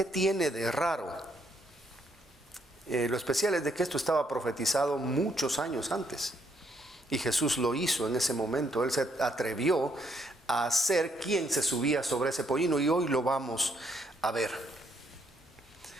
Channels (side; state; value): both; normal; correlation 0.73